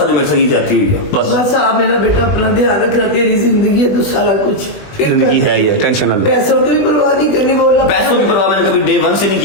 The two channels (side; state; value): right; late; 20 ms